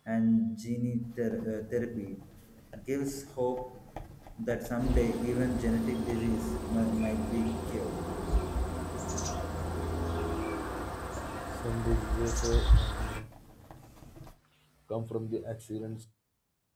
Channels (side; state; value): both; identical; correlation 1.00